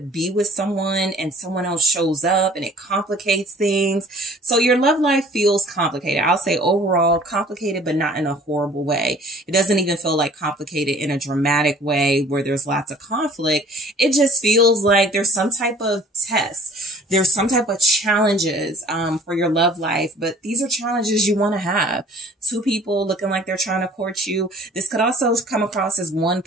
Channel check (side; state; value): both; normal; correlation 0.51